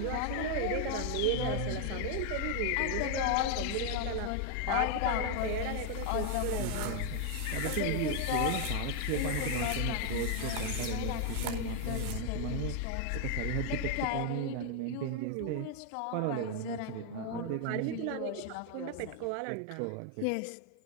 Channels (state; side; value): different; both; correlation 0.01